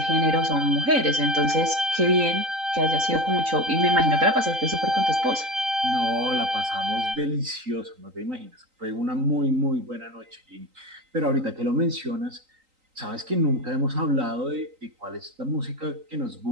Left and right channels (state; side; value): late; left; 3.9 ms